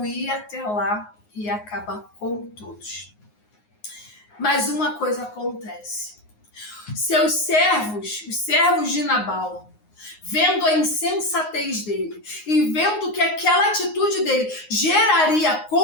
ir até lá e acabar com todos. Mas uma coisa acontece. Seus servos, os servos de Nabal, vendo a insensatez dele e vendo que aquela atitude dele geraria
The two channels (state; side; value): late; right; 9.6 ms